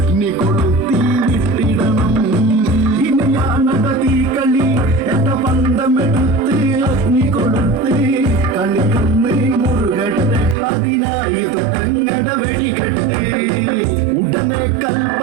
കൊളുത്തി വിട്ടിടണം. ഇനിയാണത തീക്കളി, എന്ന പന്തമെടുത്ത് അഗ്നി കൊളുത്ത് കളിക്കുന്ന മുറുകട്ടെ, അതിനായി തുടങ്ങട വെടികെട്ട്. ഉടനെ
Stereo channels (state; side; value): drops out; left; at 10.6 s